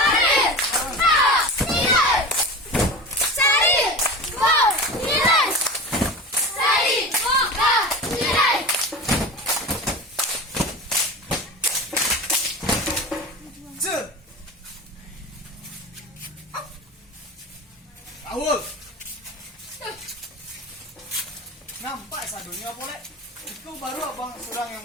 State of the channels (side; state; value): both; normal; correlation 0.30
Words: Awal. Nampak sadunya boleh. Itu baru abang surang yang